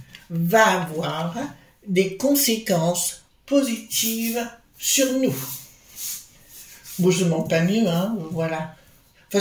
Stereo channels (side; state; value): both; identical; correlation 1.00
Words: va avoir des conséquences positives sur nous? Bon, je ne demande pas mieux, hein, voilà. De